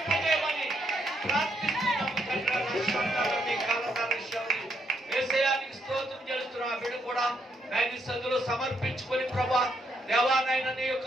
ప్రార్థిస్తున్నాము తండ్రి. ఏసయానికి స్తోత్రం చేస్తున్నాం. ఆ బిడ్డ కూడా నాయన సదులు సమర్పించుకొని ప్రభా దేవానాయన నీ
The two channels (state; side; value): normal; both; correlation 0.75